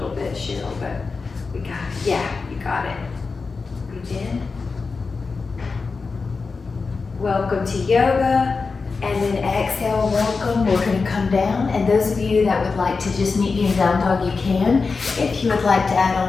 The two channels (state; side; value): quieter; right; 4.5 dB